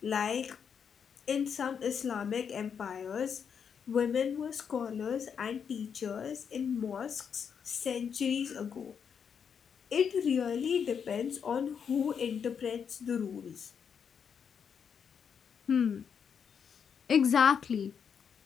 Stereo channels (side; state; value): right; quieter; 7.1 dB